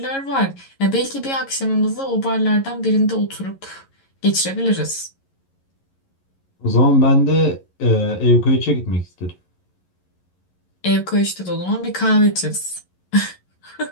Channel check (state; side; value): late; right; 11 ms